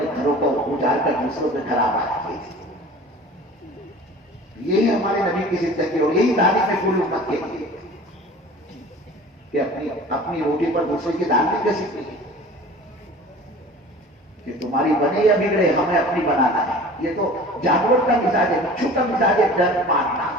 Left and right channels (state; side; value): normal; both; correlation 0.42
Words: گھروں کو اجاڑ کر دوسروں کے گھر آباد کیے تھے. یہی ہمارے نبی کی زندگی اور یہی تعلیم ہے پوری امت کے لیے کہ اپنی روٹی پر دوسرے کی دال نہیں کر سکتی کہ تمہاری بنے یا بگڑے ہمیں اپنی بنانا ہے. یہ تو جانور کا مزاج ہے، بچوں کا مزاج ہے ڈر مارنا.